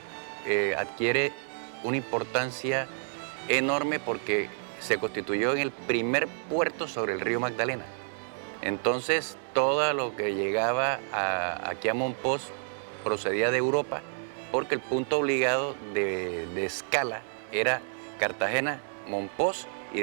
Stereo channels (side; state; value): left; silent; digital silence